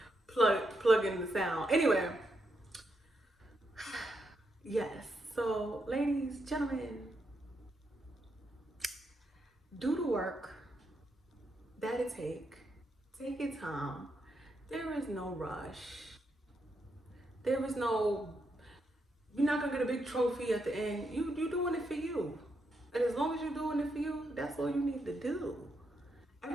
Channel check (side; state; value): both; normal; correlation 0.81